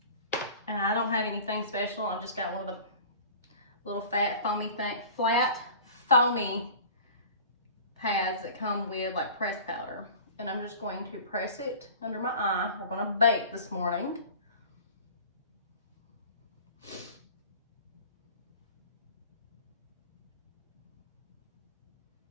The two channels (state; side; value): inverted; both; correlation -0.41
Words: And I don't have anything special. I've just got one of the little flat foamy pads that come with like pressed powder. And I'm just going to press it under my eye. We're gonna bake this morning.